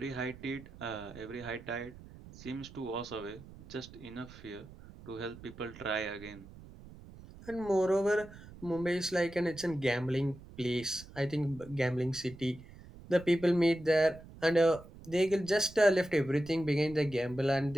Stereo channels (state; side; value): noise; right; rumble, 18 dB below the sound